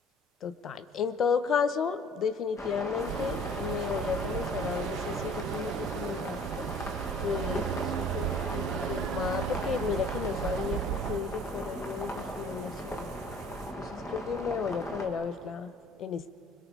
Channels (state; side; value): normal; both; correlation 0.51